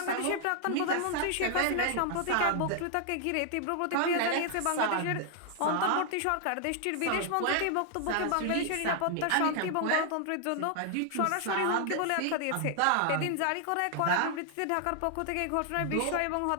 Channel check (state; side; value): different; both; correlation 0.00